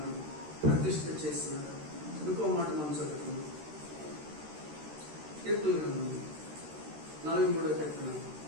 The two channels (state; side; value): late; left; 13 ms